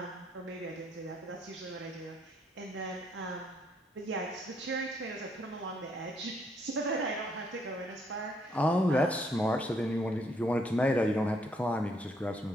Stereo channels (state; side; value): normal; both; correlation 0.71